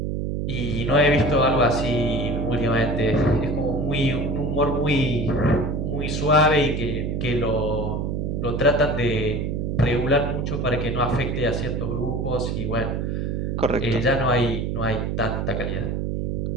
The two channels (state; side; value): noise; right; hum, 1 dB below the sound